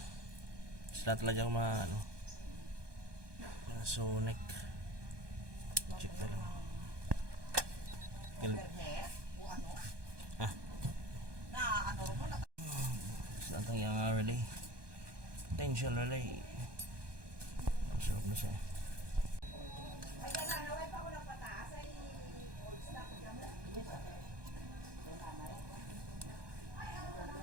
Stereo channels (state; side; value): late; left; 1.2 ms